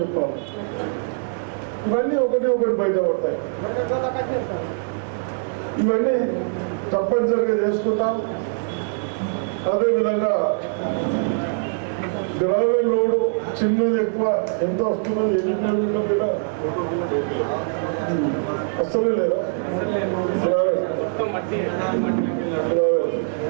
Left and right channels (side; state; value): left; silent; 64 dB below the other